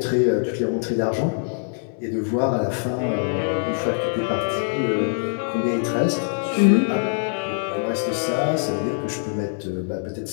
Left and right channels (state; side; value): silent; right; digital silence